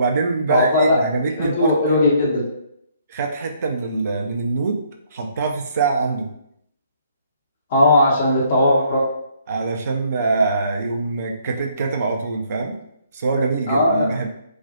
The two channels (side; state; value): both; inverted; correlation -0.66